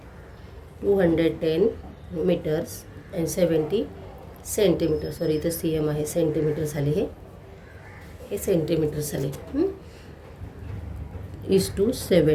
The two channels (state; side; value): identical; both; correlation 1.00